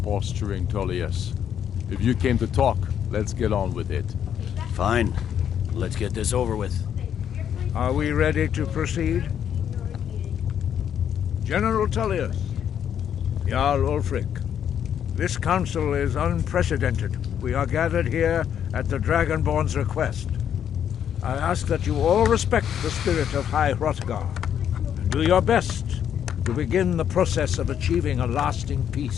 posturing, Tullius. If you came to talk, let's get on with it. Fine. Let's get this over with. Are we ready to proceed? General Tullius, Jarl Ulfric, this council is unprecedented. We are gathered here at the Dragonborn's request. I ask that you all respect the spirit of High Hrothgar and do your best to begin the process of achieving a lasting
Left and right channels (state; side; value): quieter; right; 9.1 dB